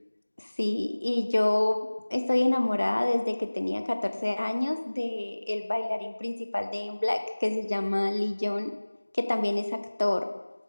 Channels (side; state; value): both; inverted; correlation -1.00